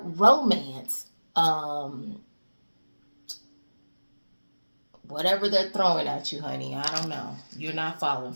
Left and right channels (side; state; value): both; inverted; correlation -1.00